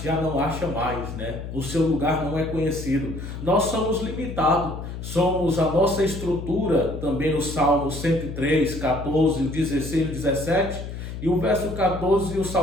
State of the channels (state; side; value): noise; left; hum, 8 dB below the sound